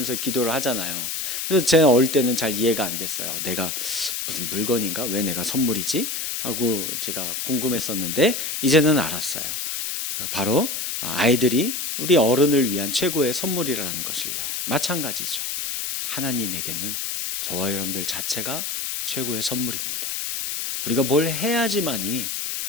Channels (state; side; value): noise; left; hiss, 3 dB below the sound